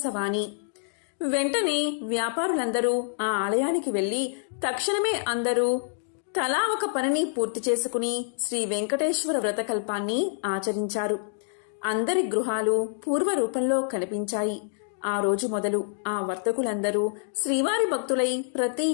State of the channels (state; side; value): silent; right; digital silence